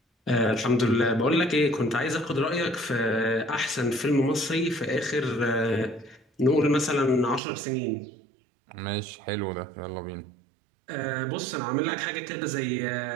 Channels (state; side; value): drops out; left; at 7.4 s